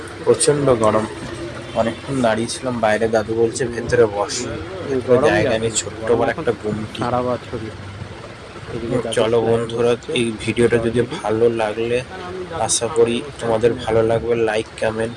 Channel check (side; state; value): both; identical; correlation 1.00